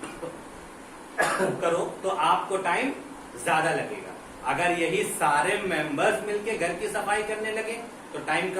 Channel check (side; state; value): both; identical; correlation 1.00